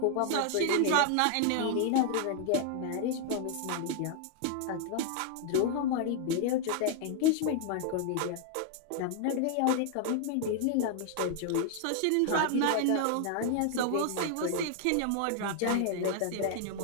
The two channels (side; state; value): both; different; correlation 0.00